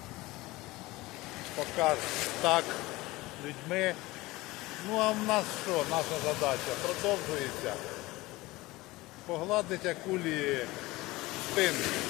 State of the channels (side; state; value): right; quieter; 20.1 dB